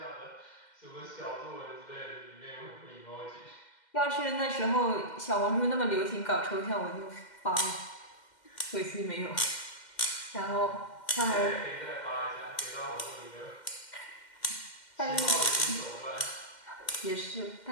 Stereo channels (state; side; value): late; right; 2.1 ms